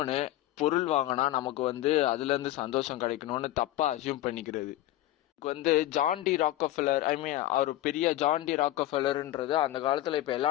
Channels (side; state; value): right; quieter; 15.1 dB